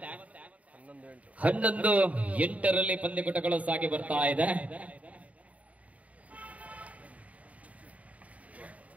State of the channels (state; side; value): late; left; 0.068 ms